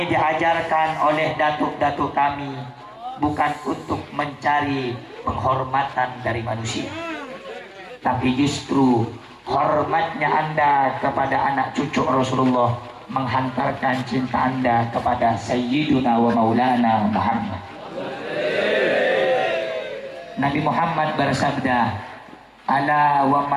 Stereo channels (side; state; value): both; identical; correlation 1.00